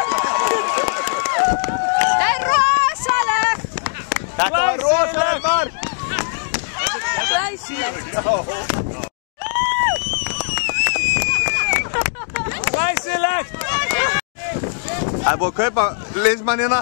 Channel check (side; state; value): right; silent; digital silence